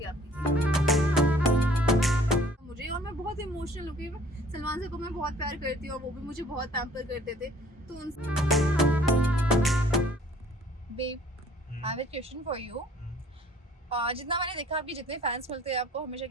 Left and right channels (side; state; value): both; normal; correlation 0.55